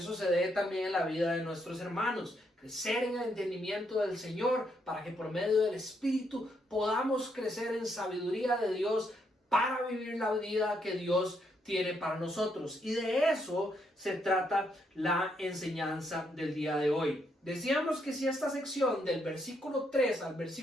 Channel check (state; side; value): normal; both; correlation 0.76